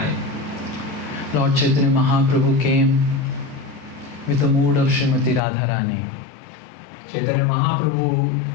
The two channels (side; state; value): right; drops out; at 5.4 s